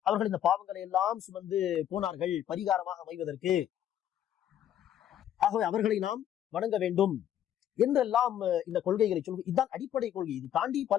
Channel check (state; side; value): quieter; right; 10.8 dB